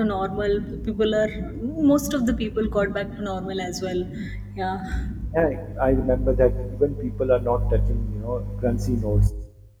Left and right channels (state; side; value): identical; both; correlation 1.00